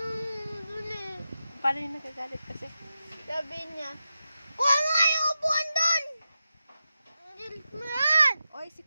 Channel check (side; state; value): both; inverted; correlation -0.90